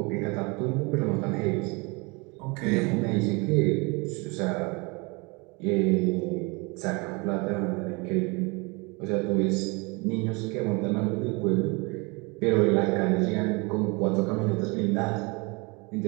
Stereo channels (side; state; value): left; quieter; 28.3 dB